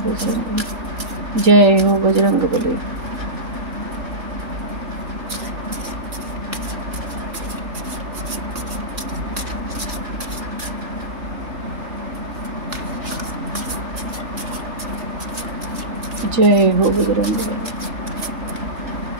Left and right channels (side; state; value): left; late; 3.4 ms